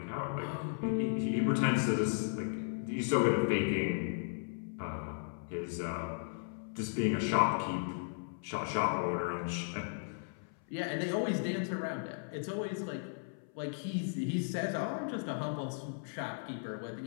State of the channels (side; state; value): right; silent; 54 dB below the other